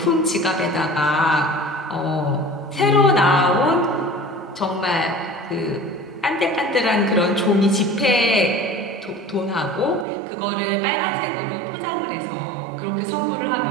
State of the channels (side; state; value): left; drops out; at 10.1 s